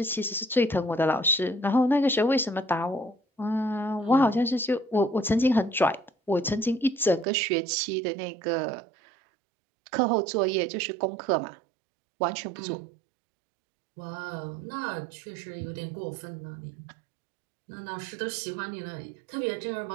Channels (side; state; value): left; drops out; at 7.2 s